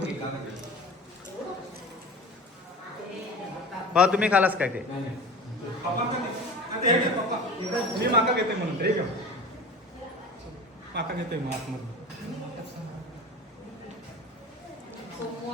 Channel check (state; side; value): normal; both; correlation 0.34